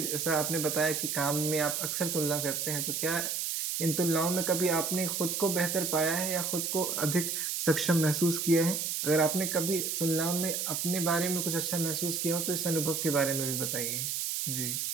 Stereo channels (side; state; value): right; noise; hiss, 1 dB below the sound